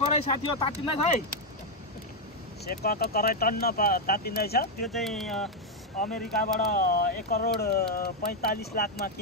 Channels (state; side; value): normal; both; correlation 0.01